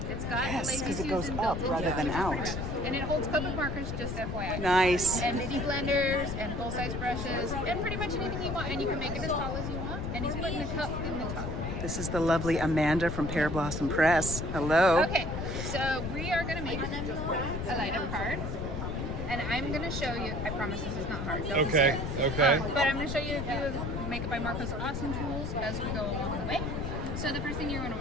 It's got Yes, lazy 'cause it goes Susan up built rather into than it, which is out. pretty bad. And it holds Copic markers, just FYI. Nice. And mini blenders and full-size brushes and pretty much anything you want. And you can make it as tall as you want. And he's putting a cup in the top. This is the lovely Amanda from Pear Blossom Press. Hello. Okay, so we are going to make a light-up card. And I'm going to show you, I promise this is not hard. Don't be Okay, scared. okay. But I'm going to show you a few of Make It by Marko's awesome tools as we go along the way. So the first thing you're going to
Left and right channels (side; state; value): left; noise; rumble, 4 dB below the sound